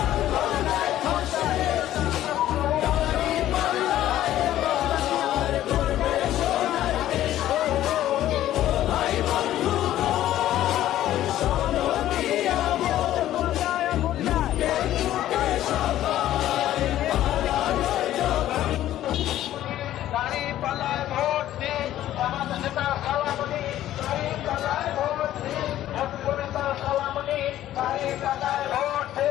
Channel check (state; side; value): quieter; right; 13.1 dB